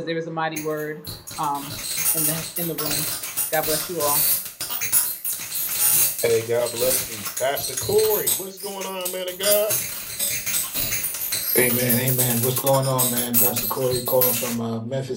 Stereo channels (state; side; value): identical; both; correlation 1.00